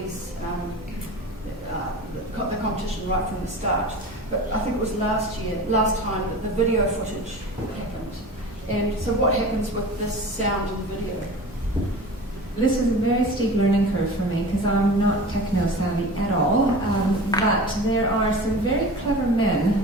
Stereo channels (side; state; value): both; normal; correlation 0.36